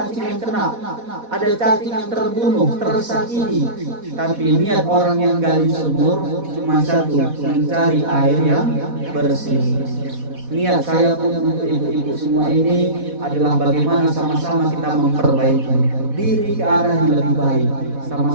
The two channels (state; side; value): late; left; 4.1 ms